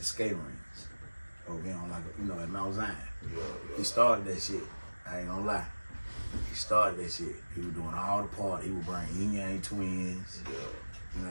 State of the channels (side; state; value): both; inverted; correlation -1.00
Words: skating rinks. Over on, like, you know, at Mount Zion. Yeah. He started that shit. I ain't gonna lie. He started that shit. He was doing all the parties. He would bring Yin Yang Twins. Yeah. You know